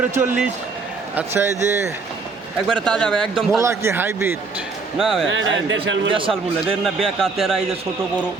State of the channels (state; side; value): quieter; left; 4.3 dB